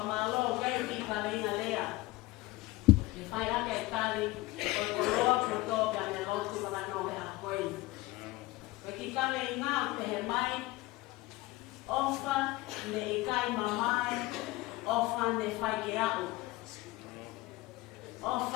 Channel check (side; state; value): right; quieter; 19.7 dB